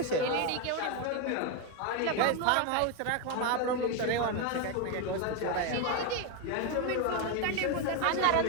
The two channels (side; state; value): both; different; correlation 0.01